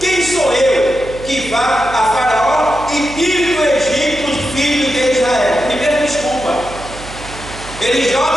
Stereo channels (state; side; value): noise; right; hum, 14 dB below the sound